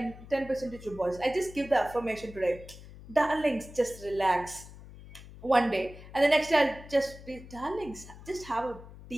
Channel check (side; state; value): left; noise; hum, 17 dB below the sound